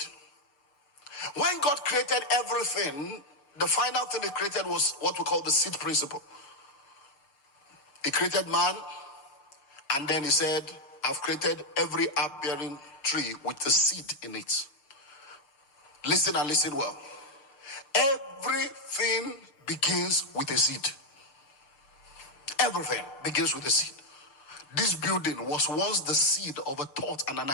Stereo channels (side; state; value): right; late; 6.6 ms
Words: When God created everything, the final thing he created was what we call the seed principle. He created man, and then he said, I've created every herb-bearing tree with a seed in it. Listen and listen well. Everything begins with a seed. Everything begins with a seed. This building was once the seed of a thought and an